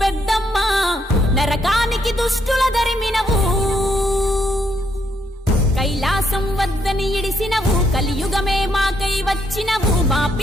పెద్దమ్మ, నరకానికి దుష్టుల ధరిమినవు. కైలాసం వద్దని ఇడిసినవు, కలియుగమే మాకై వచ్చినవు, మా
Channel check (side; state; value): both; normal; correlation 0.74